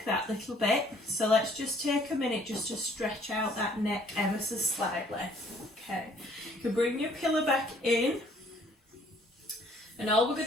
that little bit, so let's just take a minute just to stretch out that neck ever so slightly. Okay, you can bring your pillow back in, and all we're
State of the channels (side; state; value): both; normal; correlation 0.60